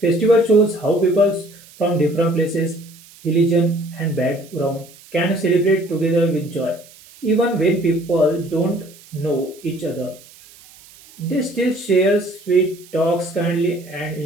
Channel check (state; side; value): noise; right; hiss, 23 dB below the sound